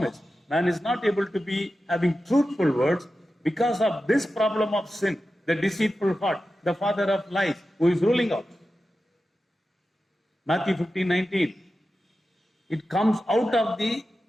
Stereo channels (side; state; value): both; normal; correlation 0.92